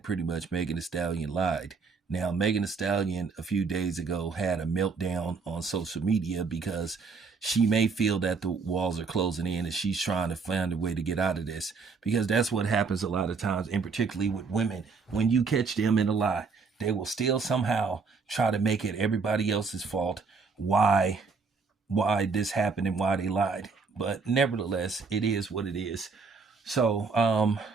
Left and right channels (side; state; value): left; quieter; 4.9 dB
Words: pretty much Megan Thee Stallion lied. Now, Megan Thee Stallion a few days ago had a meltdown on social media because she may feel that the walls are closing in and she's trying to find a way to get out of this, because that's what happens a lot of times, and particularly with women. When you catch them in a lie, they will still somehow try to make it everybody else's fault why this happened and why they lied. But nevertheless, it is what it is. So,